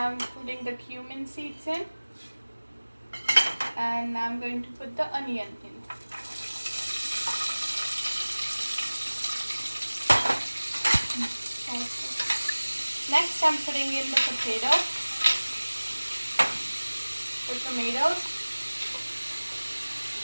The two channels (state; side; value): inverted; both; correlation -1.00